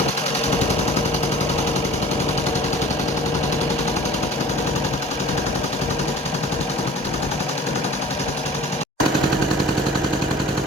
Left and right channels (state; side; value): normal; both; correlation 0.45